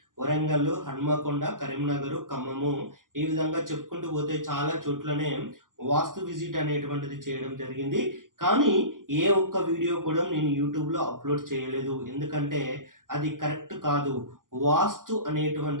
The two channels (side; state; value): left; late; 0.90 ms